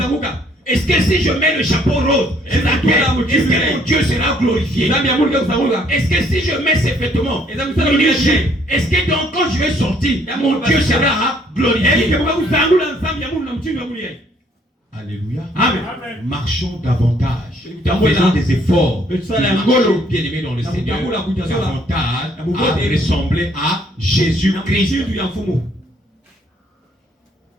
Est-ce que si je mets le chapeau rose, est-ce que mon Dieu sera glorifié? Est-ce que si je mets ces vêtements, est-ce que donc quand je vais sortir, mon Dieu sera glorifié? Alléluia. Amen. Marchons davantage. Faisons des efforts. Marchons, bien-aimés dans le Seigneur, davantage à ressembler à Jésus-Christ.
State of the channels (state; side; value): normal; both; correlation 0.64